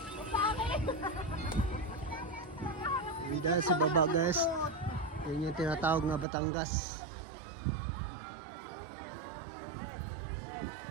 Dahil sa baba guys, yun yung tinatawag na Batangas.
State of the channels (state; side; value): drops out; left; at 6.2 s